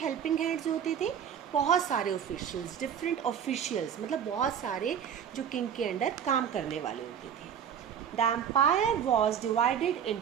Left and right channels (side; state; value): left; quieter; 8.4 dB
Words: हेल्पिंग हैंड्स होते थे? बहुत सारे ऑफिशियल्स, डिफरेंट ऑफिशियल्स, मतलब बहुत सारे जो किंग के अंडर काम करने वाले होते थे. The empire was divided